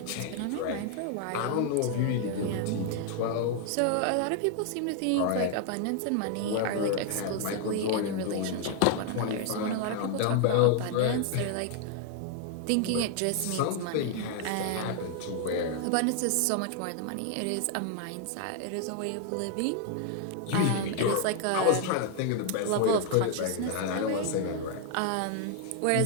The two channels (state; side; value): different; both; correlation 0.00